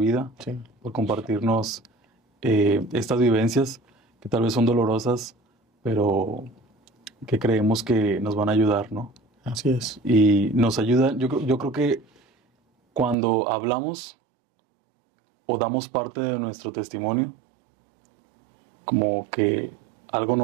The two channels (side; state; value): left; drops out; at 13.2 s